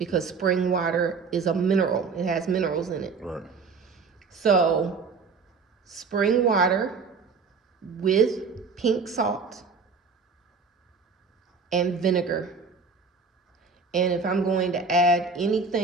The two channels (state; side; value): quieter; left; 4.9 dB